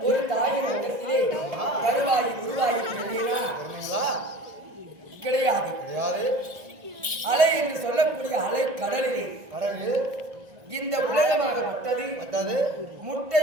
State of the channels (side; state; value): left; late; 1.4 ms